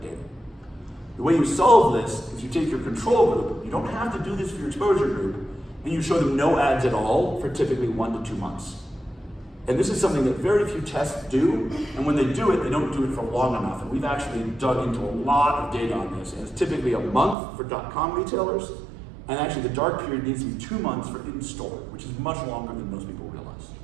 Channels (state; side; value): drops out; left; at 17.4 s